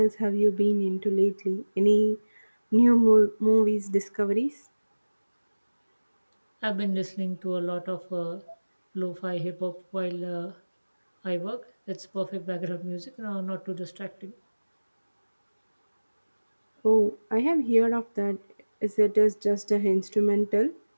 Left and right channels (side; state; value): both; inverted; correlation -1.00